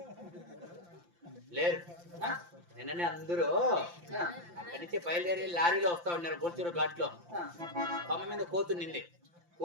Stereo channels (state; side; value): late; left; 5.8 ms